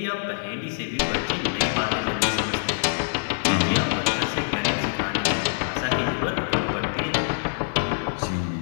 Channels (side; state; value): right; silent; digital silence